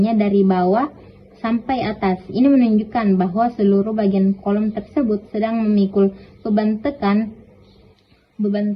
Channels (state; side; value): identical; both; correlation 1.00